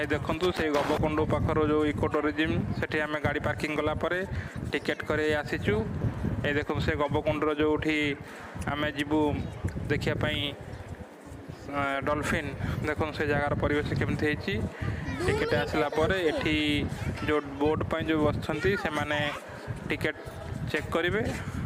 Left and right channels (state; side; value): identical; both; correlation 1.00